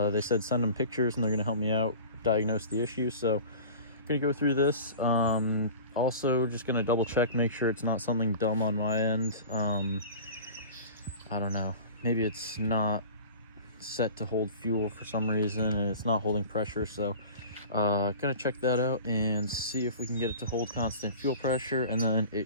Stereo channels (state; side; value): inverted; both; correlation -0.39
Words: said send them pictures and they're gonna help me out diagnose the issue. So I'm gonna go through this. Also just gonna double check, make sure it's not something dumb on my end. I don't know, maybe it's not set to hold fuel for some reason and it's not holding pressure. So gonna check that out and see if we can get it to hold constant fuel pressure, and then it